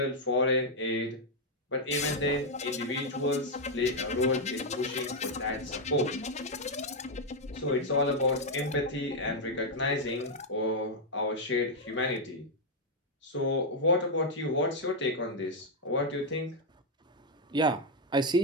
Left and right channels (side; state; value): both; normal; correlation 0.00